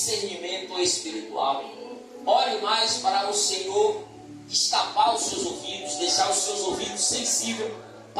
espiritual. Ore mais para o Senhor destapar os seus ouvidos, deixar os seus ouvidos sensíveis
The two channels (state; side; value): identical; both; correlation 1.00